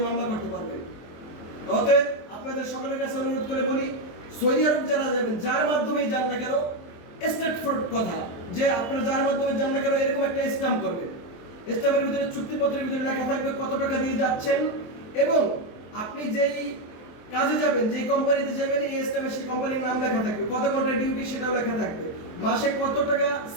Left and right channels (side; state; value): right; late; 24 ms